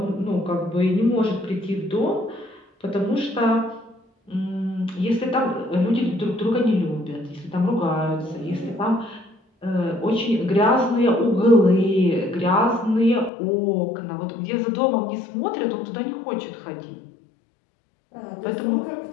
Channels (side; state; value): right; drops out; at 13.3 s